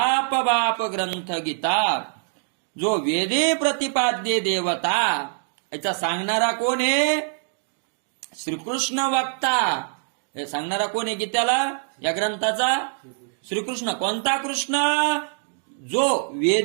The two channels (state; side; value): silent; left; digital silence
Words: ग्रंथ गीता, जो वेदी प्रतिपाद्य देवता. याचा सांगणारा कोण आहे, श्रीकृष्ण वक्ता. हे सांगणारा कोण आहे गीतेला, या ग्रंथाचा, श्रीकृष्ण. कोणता कृष्ण, जो